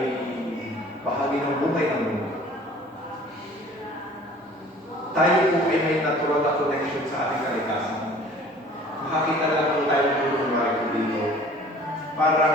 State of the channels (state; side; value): normal; both; correlation 0.49